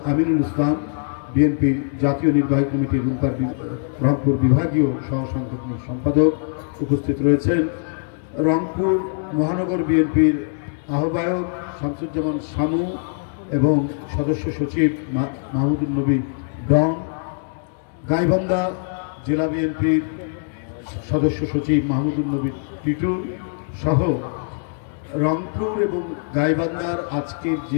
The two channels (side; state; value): right; silent; digital silence